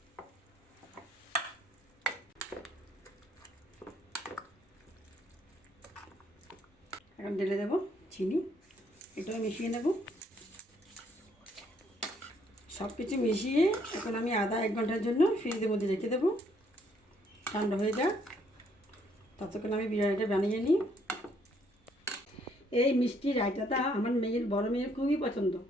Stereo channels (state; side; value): normal; both; correlation 0.68